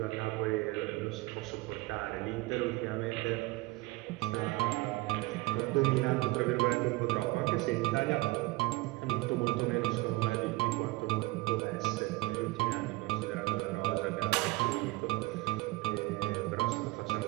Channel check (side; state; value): left; quieter; 20.4 dB